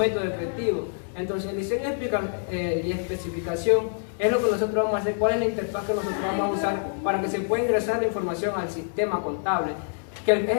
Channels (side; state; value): right; silent; digital silence